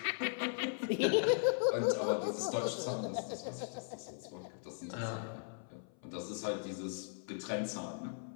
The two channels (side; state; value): right; silent; 52 dB below the other